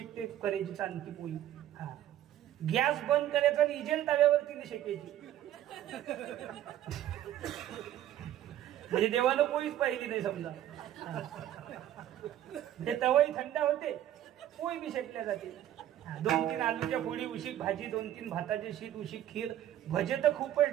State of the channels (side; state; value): left; quieter; 12.1 dB